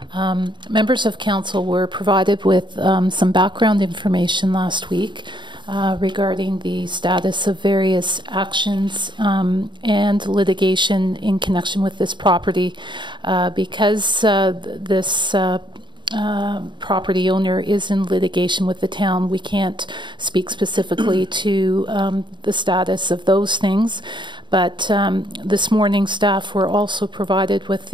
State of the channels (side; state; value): left; late; 0.23 ms